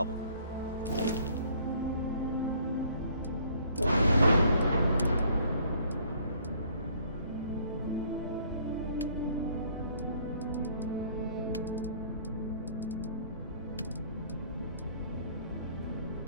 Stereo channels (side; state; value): both; inverted; correlation -0.60